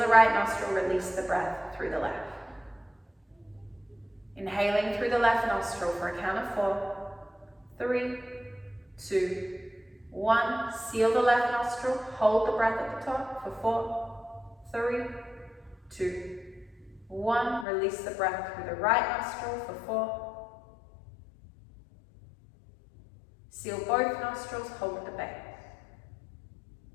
right nostril, release the breath through the left. Inhaling through the left nostril for a count of 4, 3, 2, 1. Seal the left nostril, hold the breath at the top for 4, 3, 2, 1. Release the breath through the right nostril for 4. Seal both nostrils, hold at the base.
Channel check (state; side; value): drops out; right; at 17.7 s